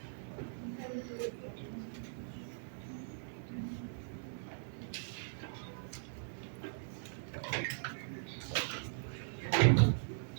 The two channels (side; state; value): left; silent; 51 dB below the other